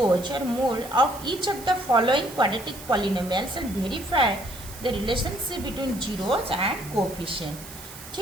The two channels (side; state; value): right; noise; hiss, 15 dB below the sound